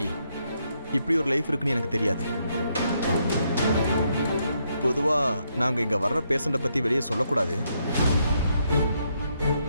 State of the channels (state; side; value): inverted; both; correlation -0.76